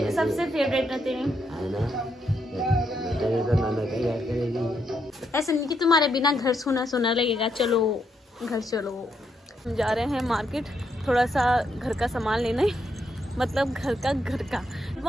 सबसे फेवरेट है तेरी ऐसा नहीं कि तुम्हारे बिना घर सुना सुना लगेगा। चलो घर चलो, हम जा रहे हैं मार्केट थोड़ा सा घर का सामान लेने, मतलब घर का।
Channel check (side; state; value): both; normal; correlation 0.78